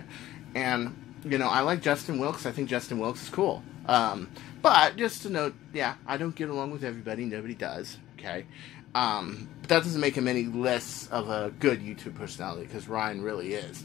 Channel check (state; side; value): quieter; right; 14.4 dB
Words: And, you know, I like Justin Wilkes. I think Justin Wilkes is cool. But just to note, yeah, I don't get along with everybody. Nobody does, okay? But that doesn't make him any less of a good YouTube personality, because Ryan really is,